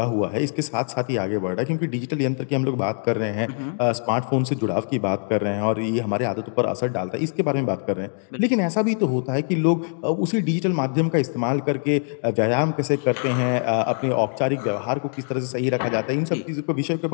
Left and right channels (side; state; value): right; silent; 63 dB below the other